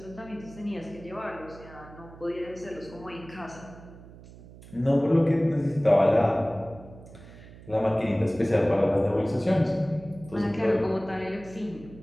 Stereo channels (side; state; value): right; noise; hum, 19 dB below the sound